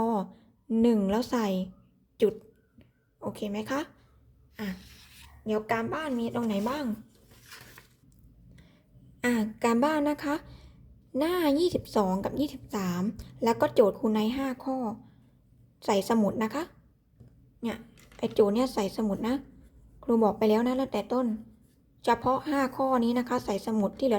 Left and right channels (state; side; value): identical; both; correlation 1.00